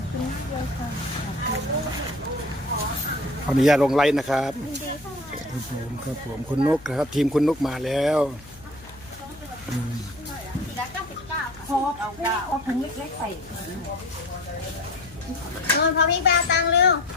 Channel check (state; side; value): noise; left; hum, 22 dB below the sound